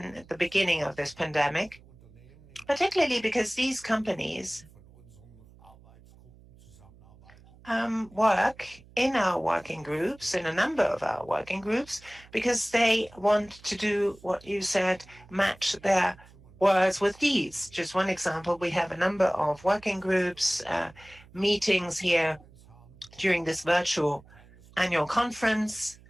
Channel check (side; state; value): right; noise; hum, 24 dB below the sound